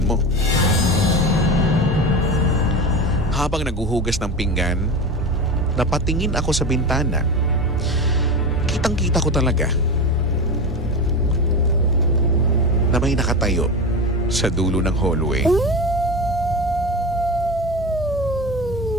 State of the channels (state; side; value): normal; both; correlation 0.24